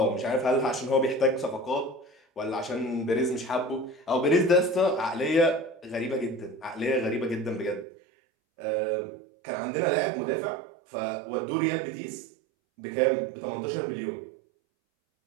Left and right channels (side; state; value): left; drops out; at 7.9 s